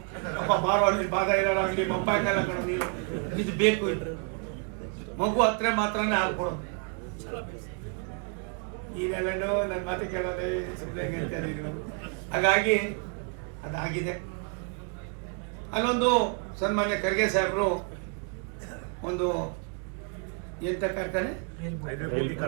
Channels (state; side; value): quieter; left; 38.9 dB